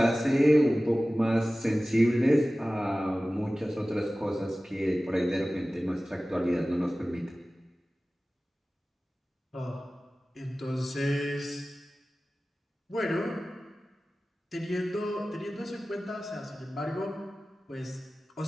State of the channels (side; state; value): both; normal; correlation 0.97